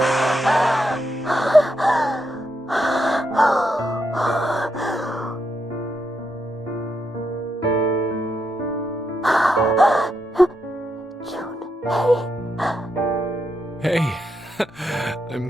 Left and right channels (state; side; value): normal; both; correlation 0.81